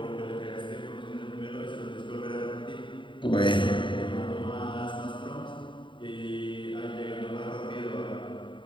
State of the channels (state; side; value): late; right; 0.24 ms